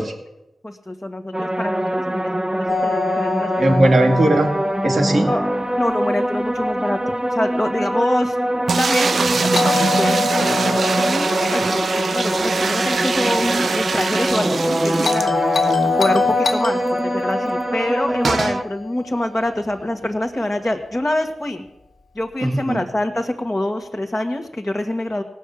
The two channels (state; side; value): normal; both; correlation 0.92